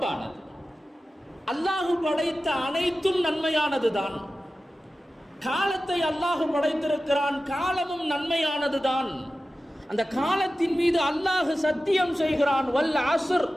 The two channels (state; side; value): normal; both; correlation 0.94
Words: அல்லாஹ் படைத்த அனைத்தும் நன்மையானதுதான். காலத்தை அல்லாஹ் படைத்திருக்கிறான், காலமும் நன்மையானதுதான். அந்த காலத்தின் மீது அல்லாஹ் சத்தியம் செய்கிறான், வல் அஸ்ர்,